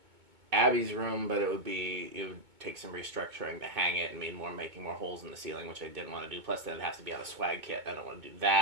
Abby's room, but it would take some restructuring to hang it and making more holes in the ceiling, which I didn't want to do. Plus, then it'd have to be on a swag kit. I don't want to do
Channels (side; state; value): left; late; 2.2 ms